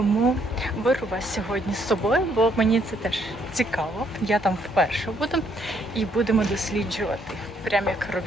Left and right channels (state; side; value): normal; both; correlation 0.70